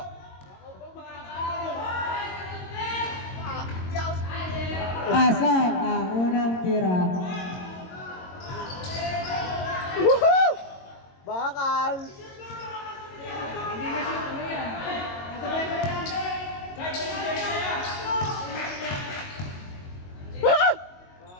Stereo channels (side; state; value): right; late; 22 ms